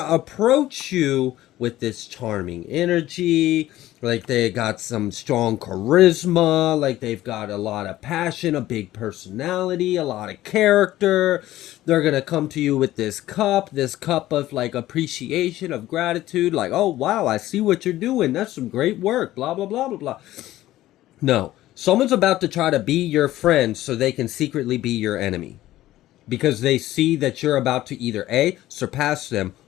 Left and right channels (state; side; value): quieter; right; 15.0 dB